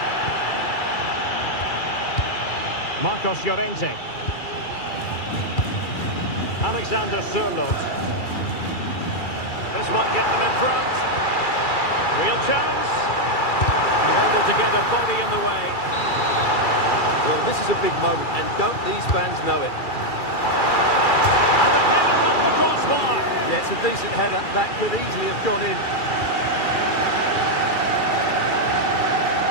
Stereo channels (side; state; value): right; late; 2.3 ms